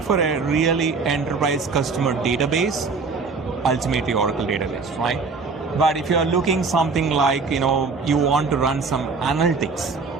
for a really enterprise customer database, ultimately Oracle database, right? But if you are looking something like, you want to run some analytics,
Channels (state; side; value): quieter; left; 4.5 dB